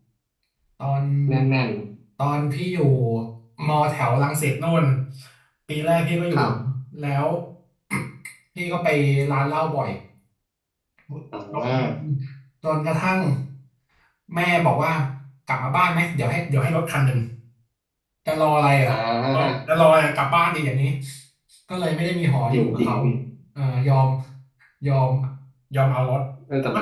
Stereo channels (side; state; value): both; identical; correlation 1.00